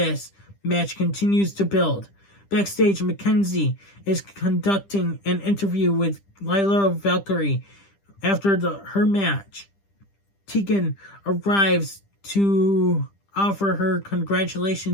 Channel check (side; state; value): right; late; 10 ms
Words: match continues to build. Backstage, Mackenzie is conducting an interview with Lyra Valkyrie after her match. Tegan arrives to offer her